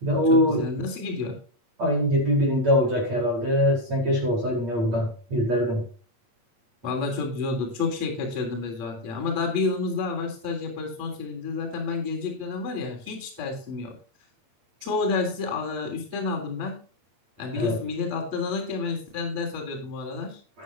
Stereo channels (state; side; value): late; left; 8.6 ms